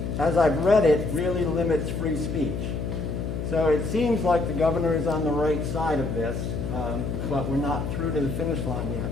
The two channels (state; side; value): noise; left; hum, 3 dB below the sound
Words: as I've read it, really limits free speech. So it seems like the governor is on the right side of this, but we're not through to the finish line yet.